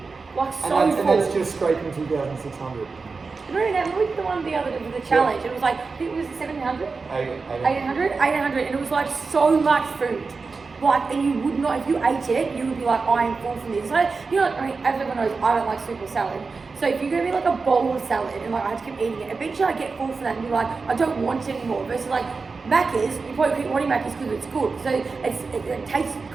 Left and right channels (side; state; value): left; quieter; 4.4 dB